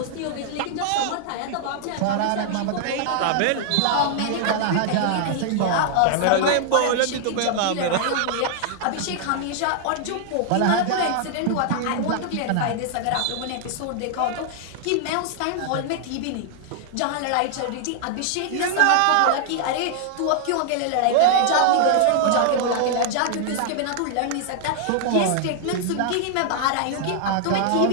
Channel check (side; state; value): both; different; correlation 0.00